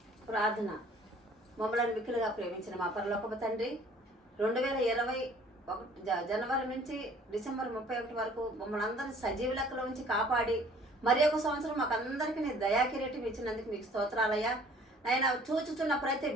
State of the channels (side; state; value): both; normal; correlation 0.54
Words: ప్రార్థన. మమ్మల్ని మిక్కిలుగా ప్రేమించిన మా పరలోకపు తండ్రి, 2021 జనవరి నుంచి డిసెంబర్ 31 వరకు మమ్మల్ని అందరినీ సజీవ లెక్కలో ఉంచి కాపాడి మరి ఒక సంవత్సరం మాకు అందరికీ నీ దయాకిరీటం ఇచ్చినందుకు మీకు స్తోత్రాలయ్యా. నాయన చూచుచున్న ప్రతి